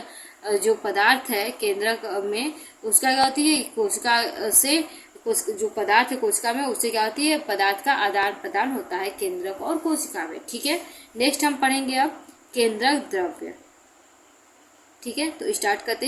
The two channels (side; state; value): both; identical; correlation 1.00